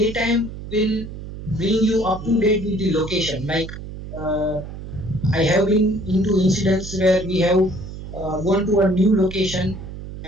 will bring you up to date with the location. Like uh, I have been into incidents where we have gone to a new location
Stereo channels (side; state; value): right; noise; hum, 11 dB below the sound